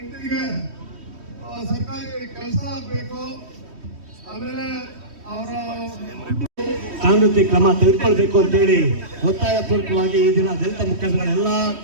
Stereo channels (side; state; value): left; late; 3.1 ms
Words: ಸರ್ಕಾರಿ ಕೆಲಸ ಆಗಬೇಕು. ಆಮೇಲೆ ಅವರ ಕಾನೂನು ಕ್ರಮ ತೆಗೆದುಕೊಳ್ಬೇಕು ಅಂತೇಳಿ ಒತ್ತಾಯ ಪೂರ್ವಕವಾಗಿ ಈ ದಿನ ದಲಿತ ಮುಖಂಡಗಳೆಲ್ಲ